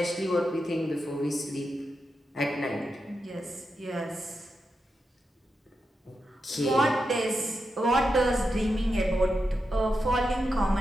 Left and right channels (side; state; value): both; normal; correlation 0.88